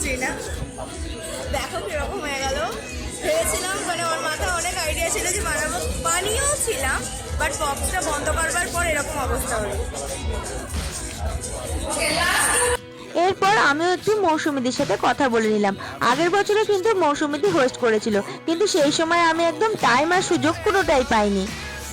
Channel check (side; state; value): both; identical; correlation 1.00